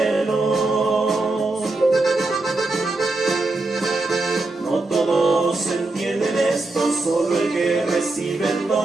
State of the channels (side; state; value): left; quieter; 3.1 dB